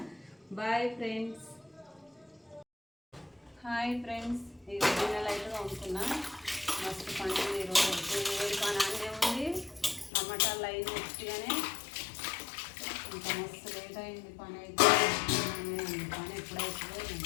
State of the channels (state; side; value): drops out; right; at 10.1 s